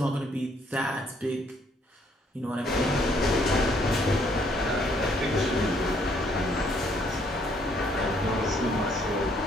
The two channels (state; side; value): normal; both; correlation 0.67